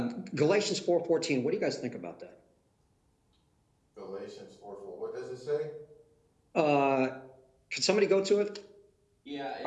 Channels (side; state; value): both; identical; correlation 1.00